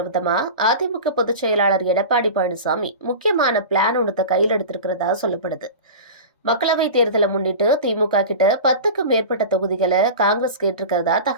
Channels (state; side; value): inverted; both; correlation -0.31